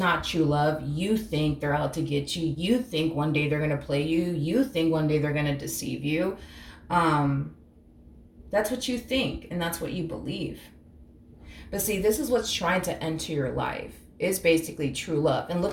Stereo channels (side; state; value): both; identical; correlation 1.00